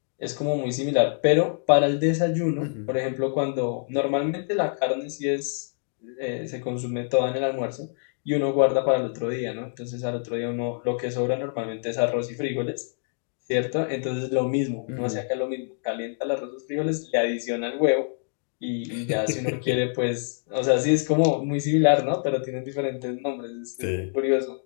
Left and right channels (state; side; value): silent; right; digital silence